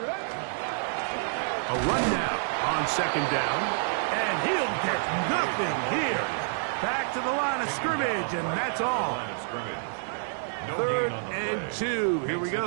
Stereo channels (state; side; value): silent; left; digital silence